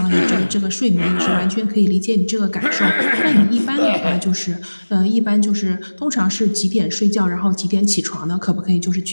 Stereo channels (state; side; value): inverted; both; correlation -1.00